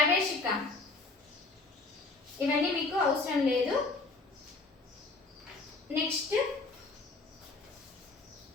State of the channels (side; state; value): right; quieter; 3.5 dB